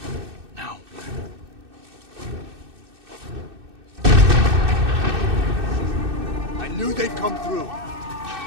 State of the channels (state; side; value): late; left; 2.6 ms